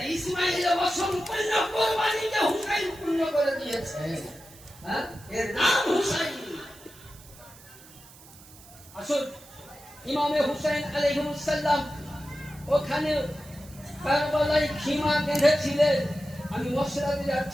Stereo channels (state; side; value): noise; right; hiss, 21 dB below the sound